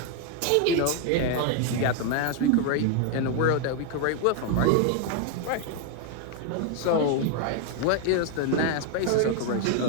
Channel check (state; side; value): different; both; correlation 0.01